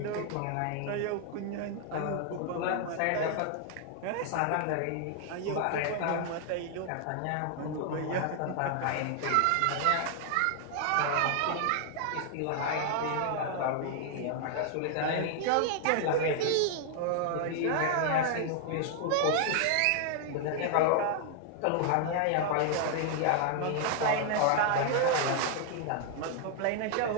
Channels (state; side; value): different; both; correlation 0.00